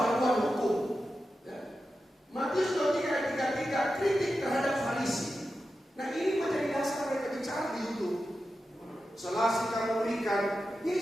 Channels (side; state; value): both; normal; correlation 0.91